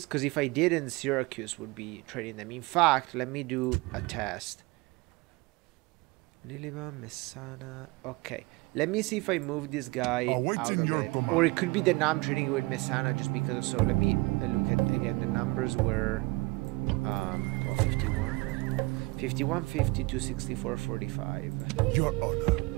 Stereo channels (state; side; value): quieter; left; 24.2 dB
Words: because if I didn't, Syracuse would be trading them. In fact, let me do a test. Lilybum, Messana. Okay. Let me see if I move this guy out of it. Or it could be that now I'm trading with Messana just because of so. Let me look at, again, the numbers were 51. 51, 52, 64, 45. Your honor.